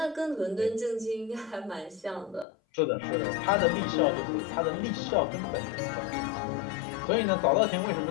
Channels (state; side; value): drops out; right; at 2.5 s